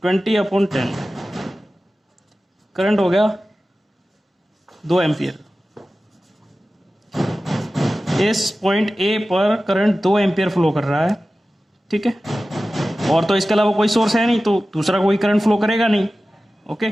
20/10, करंट हो गया 2 एम्पियर। इस पॉइंट ए पर करंट 2 एम्पियर फ्लो कर रहा है, ठीक है। और तो इसके अलावा कोई सोर्स है नहीं, तो दूसरा कोई करंट फ्लो करेगा नहीं, ओके।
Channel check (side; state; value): both; normal; correlation 0.95